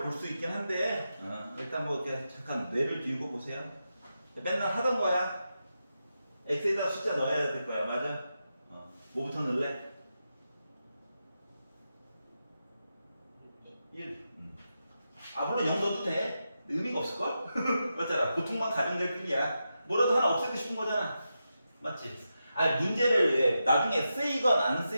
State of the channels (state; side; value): inverted; both; correlation -0.88